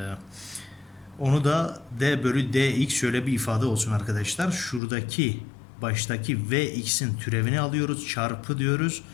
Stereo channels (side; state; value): right; drops out; at 4.8 s